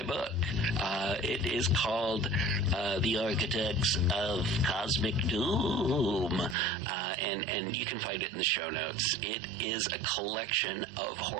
book. It is called The Architects of Cosmic Doom, and you can find it in the show notes. It is a collection of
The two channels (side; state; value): left; drops out; at 6.6 s